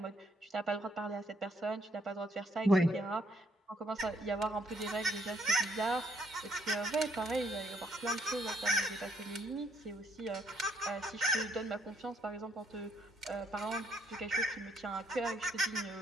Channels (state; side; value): normal; both; correlation 0.70